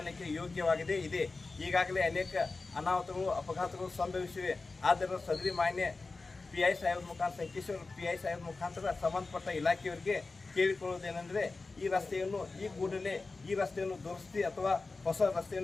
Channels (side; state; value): right; quieter; 3.8 dB